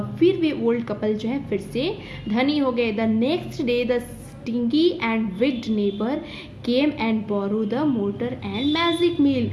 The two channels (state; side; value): identical; both; correlation 1.00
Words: फिर वे ओल्ड कपल जो है फिर से धनी हो गए। The next day the stingy and wicked neighbour came and borrow the mortar and magic mill,